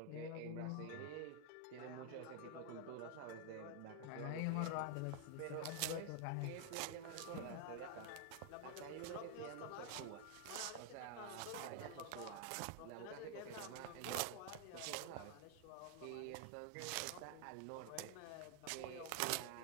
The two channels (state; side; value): different; both; correlation 0.00